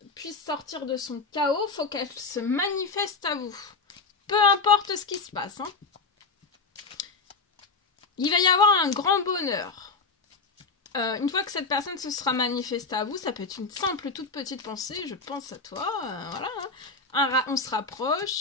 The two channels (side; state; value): right; quieter; 4.1 dB